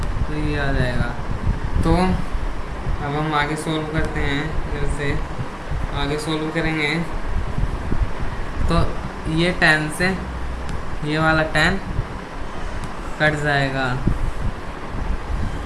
तो ये आ जाएगा। तो अब हम आगे सोल्व करते हैं, जैसे आगे सोल्व करेंगे तो ये tan से ये वाला tan कट जाएगा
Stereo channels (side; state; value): both; identical; correlation 1.00